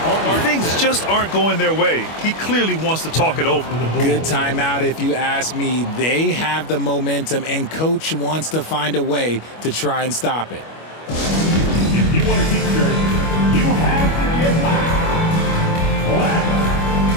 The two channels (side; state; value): right; late; 25 ms